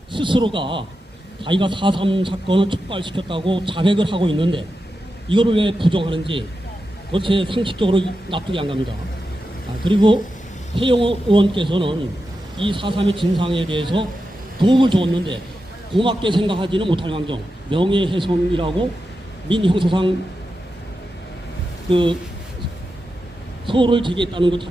스스로가 자기가 4.3 사건을 촉발시켰다고 자백을 하고 있는데 이거를 왜 부정하는지 그것이 상식적으로 납득이 안 갑니다. 그리고 태영호 의원께서는 이 4.3의 진상에 대해서 도움을 줬는데 고맙게 생각하지는 못할 망정 명예훼손이라고 민형사상 그 소를 제기했다는 것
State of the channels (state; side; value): normal; both; correlation 0.90